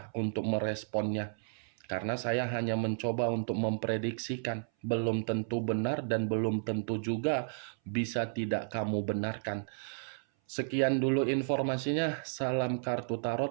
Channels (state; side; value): silent; left; 56 dB below the other